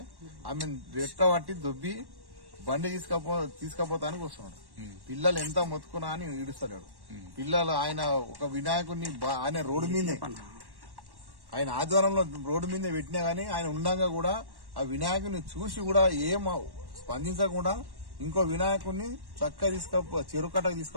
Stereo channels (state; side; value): late; left; 1.1 ms